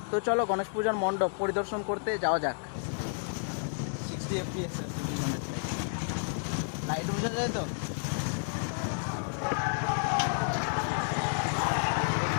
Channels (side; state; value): right; silent; 57 dB below the other